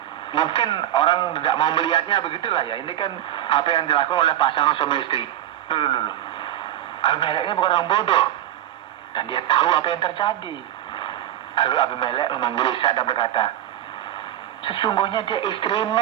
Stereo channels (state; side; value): quieter; left; 12.5 dB